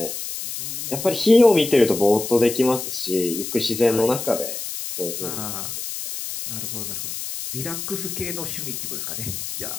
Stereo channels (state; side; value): noise; left; hiss, 6 dB below the sound